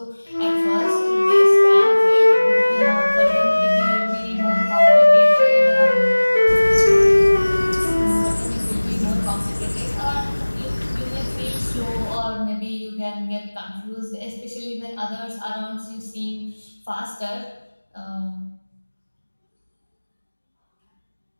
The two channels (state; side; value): inverted; both; correlation -1.00